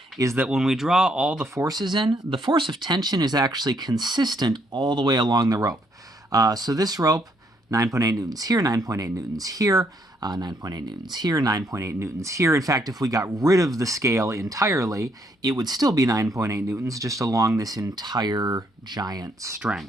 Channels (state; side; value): normal; both; correlation 0.71